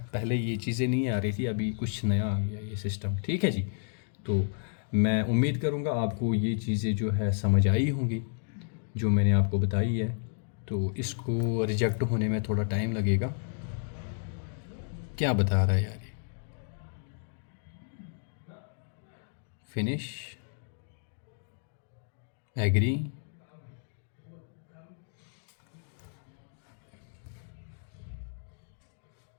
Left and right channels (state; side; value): silent; right; digital silence